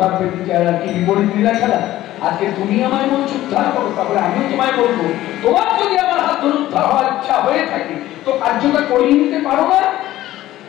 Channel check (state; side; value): quieter; right; 14.8 dB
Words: কি বিপরীত লীলা খেলা। আজকে তুমি আমায় বলছো উদ্ধার করো, তারপরে আমিও তোমায় বলবো তোমার যদি আমার হাত ধরে উদ্ধার হওয়ার ইচ্ছা হয়ে থাকে তো কার্যটা করিয়ে নিতে পারো না।